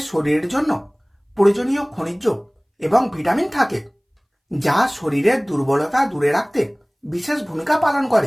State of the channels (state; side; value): identical; both; correlation 1.00